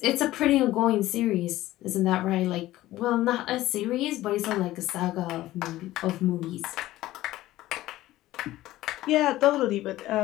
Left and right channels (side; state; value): right; quieter; 15.9 dB